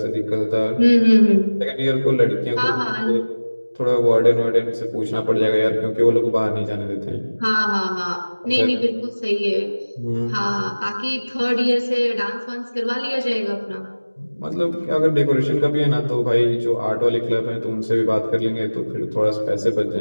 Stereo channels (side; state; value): both; inverted; correlation -1.00